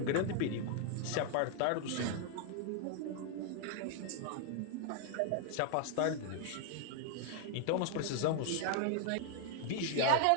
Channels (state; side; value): different; both; correlation 0.00